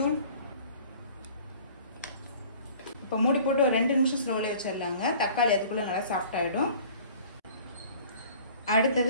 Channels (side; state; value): both; inverted; correlation -0.49